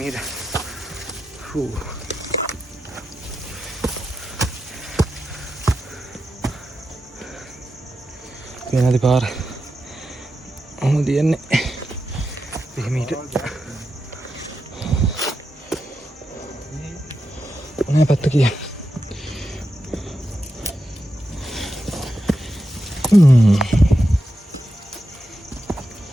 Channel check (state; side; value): normal; both; correlation 0.88